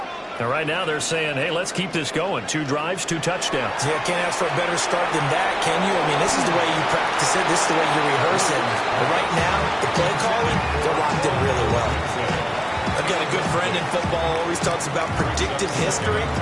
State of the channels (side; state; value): both; identical; correlation 1.00